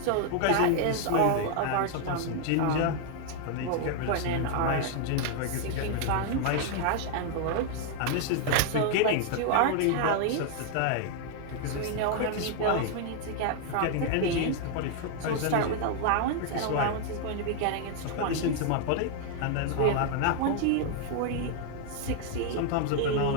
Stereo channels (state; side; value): different; both; correlation 0.00